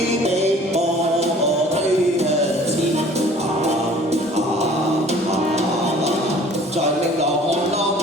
被我推向前，在明朗看浪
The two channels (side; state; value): both; normal; correlation 0.50